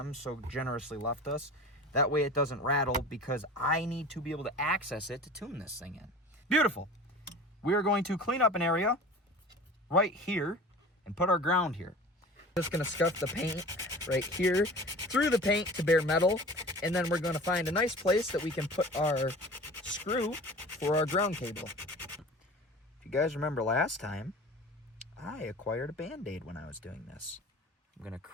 so generously left us. That way it doesn't rattle because I need to be able to access it to tune this thing in. Beautiful. We are going to clean up an area right here and put our ground here. Just going to scuff the paint right here through the paint to bare metal, and then we're going to find a nice place that we can put our screw for our ground cable. If you guys remember last time, I acquired a Band-Aid when I was doing this. I'm going to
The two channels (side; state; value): both; normal; correlation 0.39